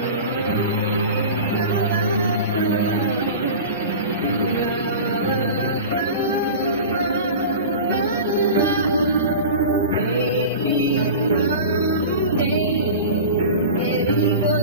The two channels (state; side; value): inverted; both; correlation -0.33